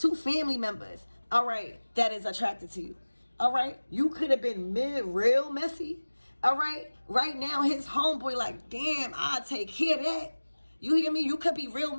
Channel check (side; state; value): both; inverted; correlation -1.00